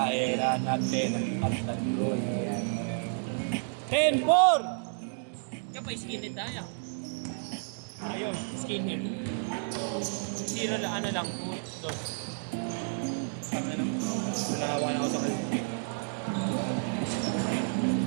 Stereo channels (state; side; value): silent; left; digital silence